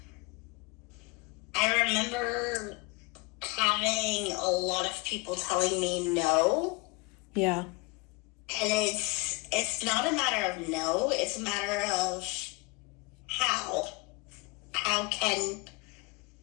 I remember having a lot of people telling me no. Yeah. And it's not a matter of no, it's a matter of how. How can,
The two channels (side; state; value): right; quieter; 26.7 dB